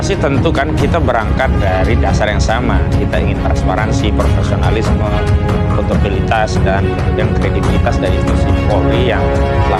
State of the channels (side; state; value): both; identical; correlation 1.00